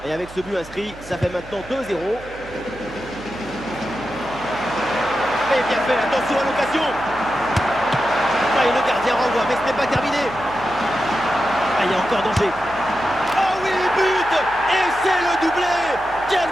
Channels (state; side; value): noise; right; hum, 18 dB below the sound